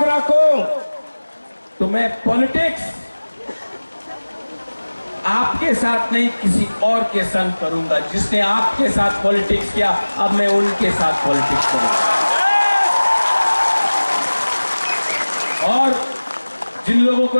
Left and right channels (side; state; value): both; inverted; correlation -1.00